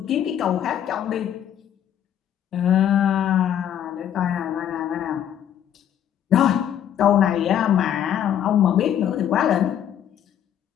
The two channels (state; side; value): quieter; right; 10.0 dB